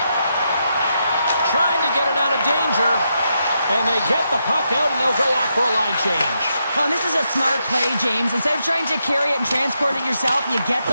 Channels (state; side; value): inverted; both; correlation -0.82